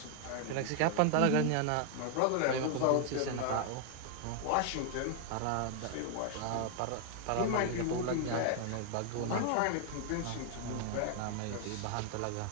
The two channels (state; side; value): different; both; correlation 0.00